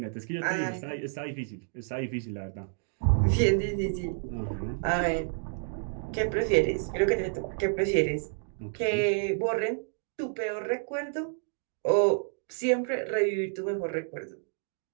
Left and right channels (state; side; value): silent; left; digital silence